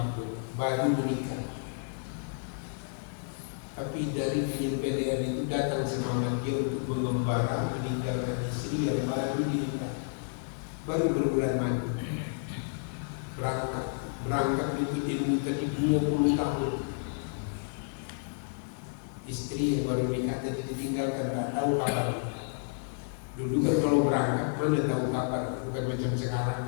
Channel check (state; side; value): silent; right; digital silence